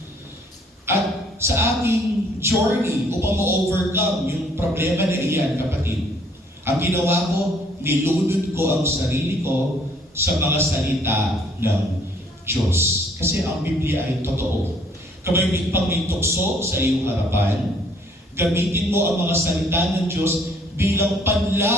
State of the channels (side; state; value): both; normal; correlation 0.62